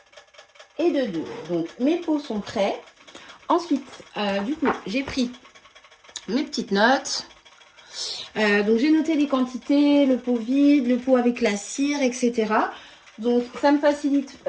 Et de deux. Donc mes pots sont prêts. Ensuite, du coup, j'ai pris mes petites notes. Donc j'ai noté les quantités, le pot vide, le pot avec la cire, etc. Donc ça me facilite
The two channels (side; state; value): both; identical; correlation 1.00